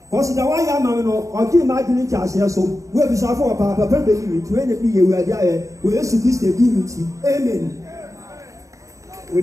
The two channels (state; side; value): late; left; 0.16 ms